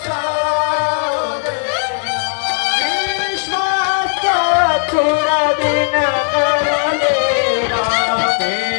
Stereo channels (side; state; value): right; silent; 61 dB below the other